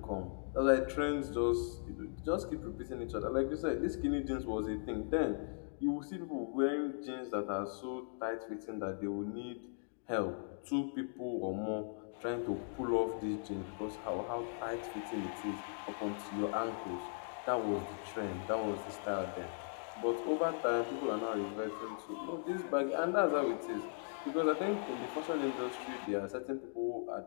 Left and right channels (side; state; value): right; silent; digital silence